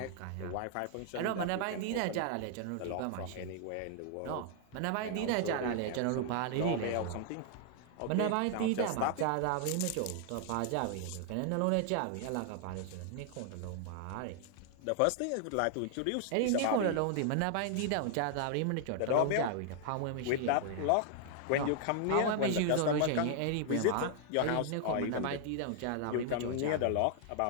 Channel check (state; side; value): different; both; correlation 0.00